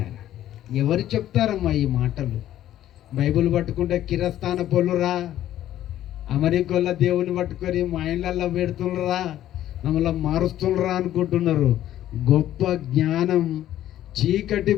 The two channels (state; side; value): quieter; right; 12.5 dB